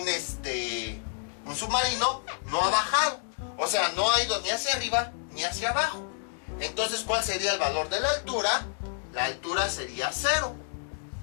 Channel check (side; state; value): right; silent; 59 dB below the other